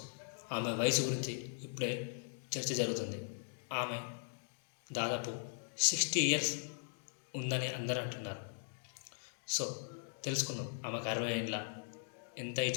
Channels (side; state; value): right; silent; digital silence